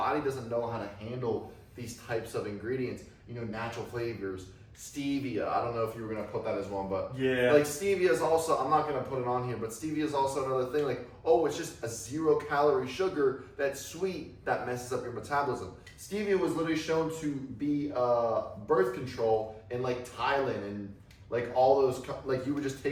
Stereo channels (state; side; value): identical; both; correlation 1.00